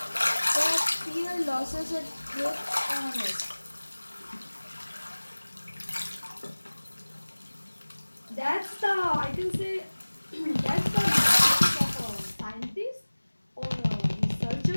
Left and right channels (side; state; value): both; inverted; correlation -1.00